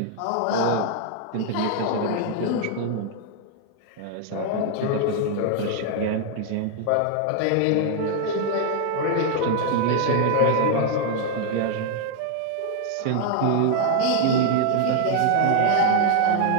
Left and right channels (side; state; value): both; different; correlation 0.00